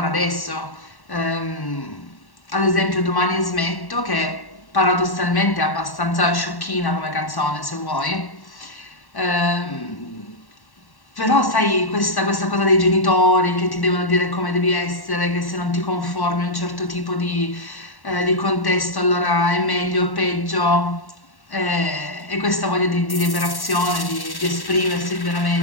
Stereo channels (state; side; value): late; right; 1.1 ms